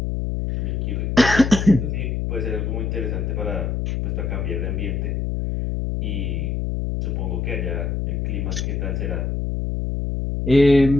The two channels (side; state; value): left; noise; hum, 1 dB below the sound